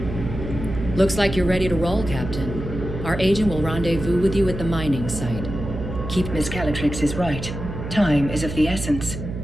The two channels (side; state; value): right; noise; hum, 7 dB below the sound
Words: Looks like you're ready to roll, Captain. Our agent will rendezvous with you at the mining site. Miss Calatrix is right. Time is of the essence.